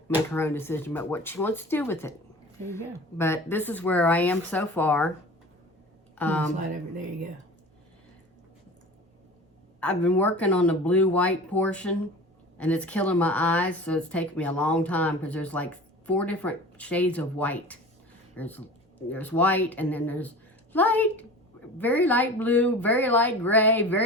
make her own decision about what she wants to do with it. There you go. But this is where I am so far. Slide over. There you go. I've been working on the blue-white portion, and it's killing my eyes, so it's taken me a long time because there's like 4 different shades of white. There's white, and then there's light, very light blue, very light gray,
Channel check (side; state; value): both; normal; correlation 0.37